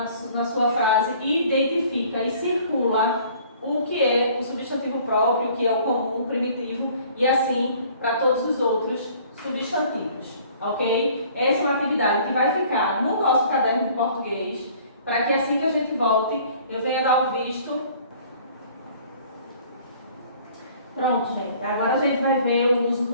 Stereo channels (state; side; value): inverted; both; correlation -0.53